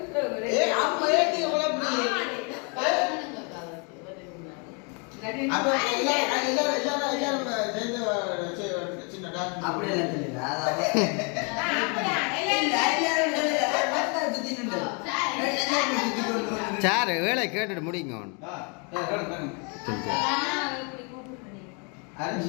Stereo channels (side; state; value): right; quieter; 34.8 dB